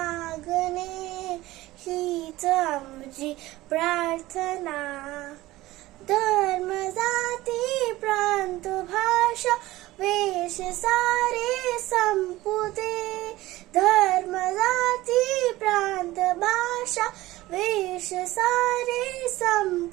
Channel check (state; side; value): quieter; left; 17.7 dB